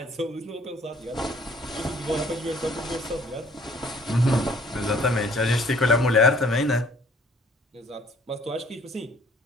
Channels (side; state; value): both; normal; correlation 0.58